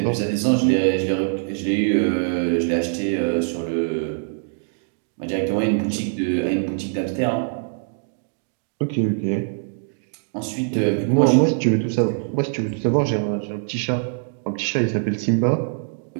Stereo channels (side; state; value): left; silent; digital silence